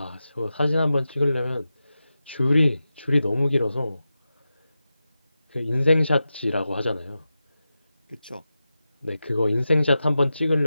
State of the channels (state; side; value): inverted; both; correlation -0.92